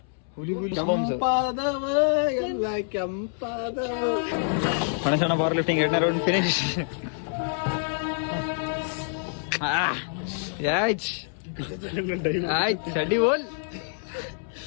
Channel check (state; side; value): silent; right; 60 dB below the other